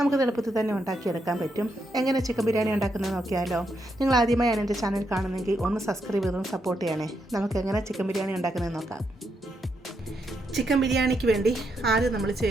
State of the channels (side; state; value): both; normal; correlation 0.80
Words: എളുപ്പത്തിൽ തന്നെ ഉണ്ടാക്കിയെടുക്കാൻ പറ്റും. എങ്ങനെ ചിക്കൻ ബിരിയാണി ഉണ്ടാക്കുന്നത് നോക്കിയാലോ? നിങ്ങൾ ആദ്യമായാണ് എൻ്റെ ചാനൽ കാണുന്നെങ്കിൽ ഒന്ന് സബ്സ്ക്രൈബ് ചെയ്തൊന്ന് സപ്പോർട്ട് ചെയ്യണേ. നമുക്ക് എങ്ങനെ ചിക്കൻ ബിരിയാണി ഉണ്ടാക്കുന്നത് നോക്കാം. ചിക്കൻ ബിരിയാണിക്ക് വേണ്ടി ആദ്യം നമ്മൾ